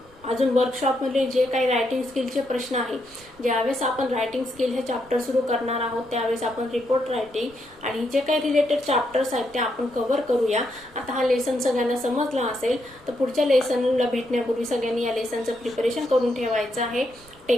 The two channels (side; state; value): right; noise; rumble, 28 dB below the sound